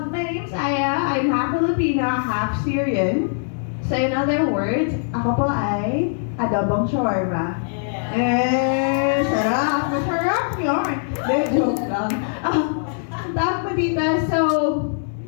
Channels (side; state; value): right; silent; digital silence